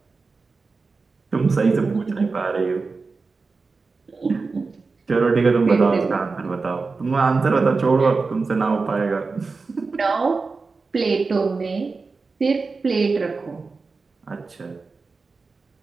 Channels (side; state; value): left; quieter; 4.2 dB